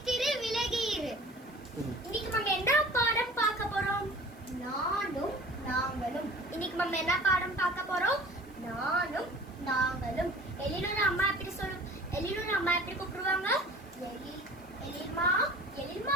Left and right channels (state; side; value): noise; right; hiss, 29 dB below the sound